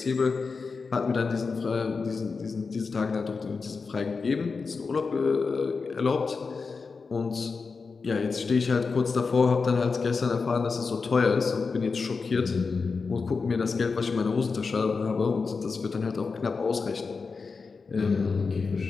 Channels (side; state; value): right; quieter; 4.7 dB